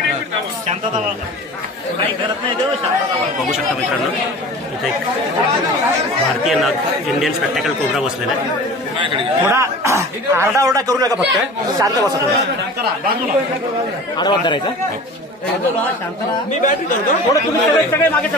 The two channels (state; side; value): normal; both; correlation 0.39